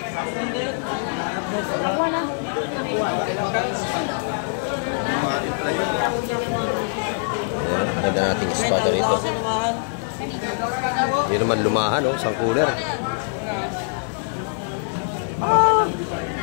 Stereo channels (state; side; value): silent; right; digital silence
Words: Ayan, ganda nating espada rito. Yun naman lumahan, oh. Isang cooler.